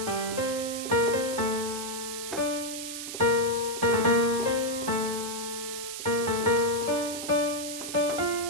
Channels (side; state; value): right; noise; hiss, 7 dB below the sound